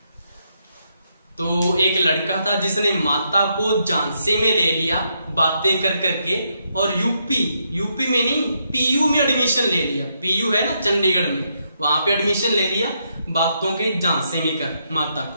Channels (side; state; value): both; inverted; correlation -0.78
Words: तो एक लड़का था जिसने माता को झांसे में ले लिया बातें कर करके, और यूपी में नहीं, पीयू में एडमिशन ले लिया। पीयू है ना चंडीगढ़ में, वहां पे एडमिशन ले लिया बातों के झांसे में कर माता